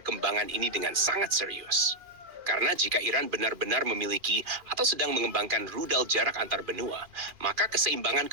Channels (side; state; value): left; late; 2.4 ms